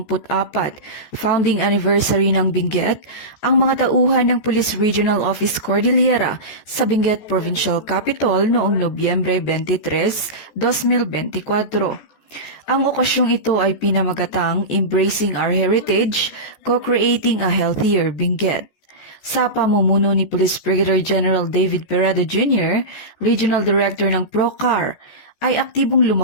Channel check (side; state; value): right; late; 14 ms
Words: founding anniversary ng Benguet, ang mga tauhan ng Police Regional Office Cordillera sa Benguet Provincial Capital noong Nobyembre 23, 2024. Ang okasyong ito ay pinamagatang Embracing Our Heritage, Co-Creating a Healthier Benguet. Sa pamumuno ni Police Brigadier General David Peredo Jr., Regional Director ng PROCAR, ay aktibong